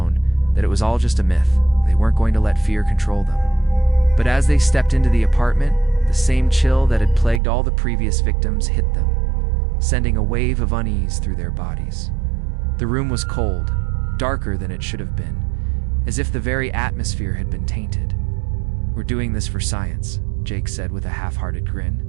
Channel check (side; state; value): left; drops out; at 7.4 s